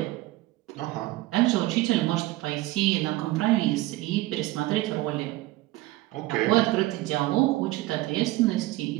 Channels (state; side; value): quieter; left; 18.1 dB